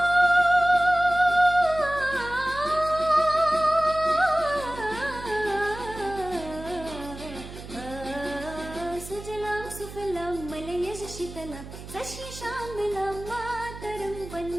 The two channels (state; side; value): noise; right; hum, 13 dB below the sound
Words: ಸುಜಲಾಂ ಸುಫಲಾಂ ಮಲಯಜ ಶೀತಲಾಂ ಸಸ್ಯಶ್ಯಾಮಲಾಂ ಮಾತರಂ